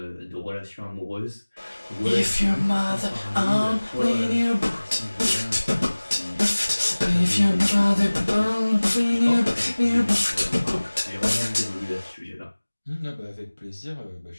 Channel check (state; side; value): inverted; both; correlation -1.00